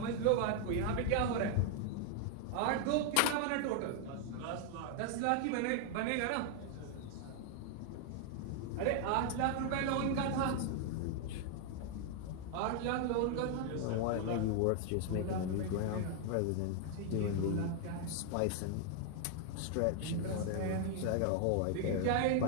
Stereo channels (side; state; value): both; different; correlation 0.00